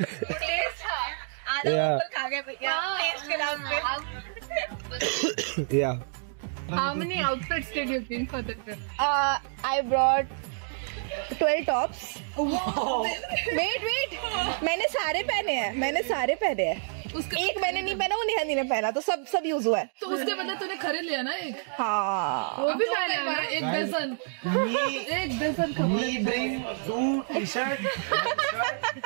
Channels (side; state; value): left; silent; digital silence